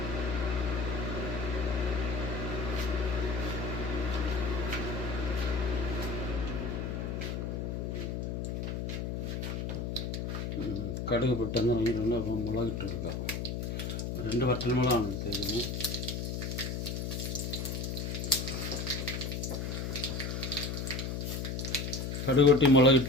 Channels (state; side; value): noise; left; hum, 3 dB below the sound